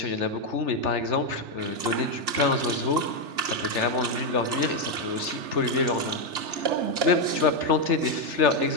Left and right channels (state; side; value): late; left; 3.4 ms